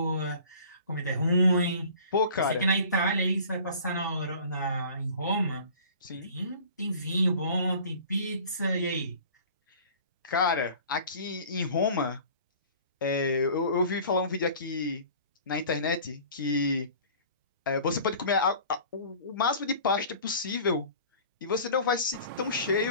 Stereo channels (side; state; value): both; inverted; correlation -0.45